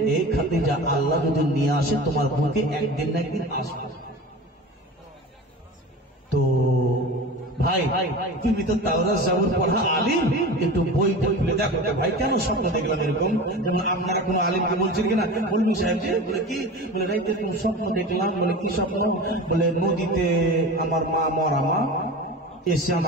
এই খাদিজা, আল্লাহ যদি নিয়ে আসে তোমার বুকে একদিন না একদিন আসবে। তো ভাই তুমি তো তাওরাত জাবুর পড়া আলিম, একটু বইটা খুলে দেখো ভাই কেন স্বপ্ন দেখলাম এরকম। যেমন আপনারা কোনো আলিমকে বলছেন কিনা, বলবি সাহেব যে বলে কি, বলে রাইতে কোন স্বপ্ন দেখলাম, বলে কি স্বপ্ন, বলে নদীতে আমার মা মরা মা এসে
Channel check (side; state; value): both; normal; correlation 0.32